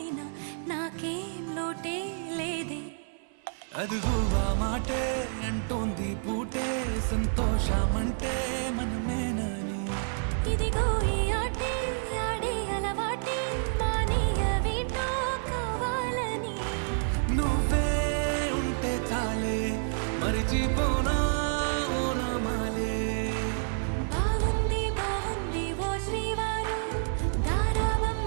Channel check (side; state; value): left; silent; 59 dB below the other